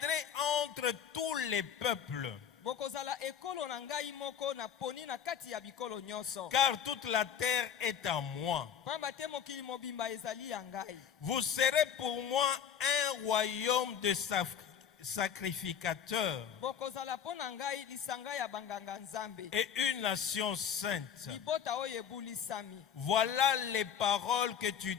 entre tous les peuples. Car toute la terre est à moi. Vous serez pour moi un royaume de sacrificateurs et une nation sainte. Voilà les paroles que tu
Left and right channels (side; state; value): right; quieter; 8.4 dB